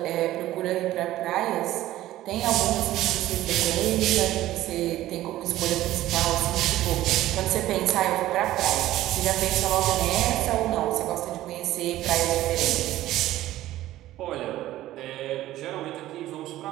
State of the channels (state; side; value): quieter; left; 14.9 dB